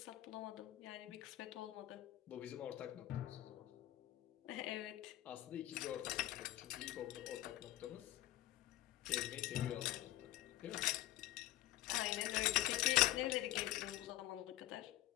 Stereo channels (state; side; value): quieter; right; 15.5 dB